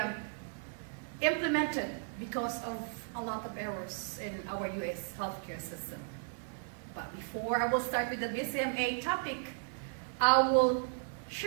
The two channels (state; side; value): silent; left; digital silence